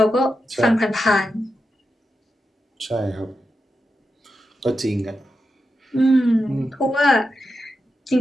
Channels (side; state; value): both; normal; correlation 0.89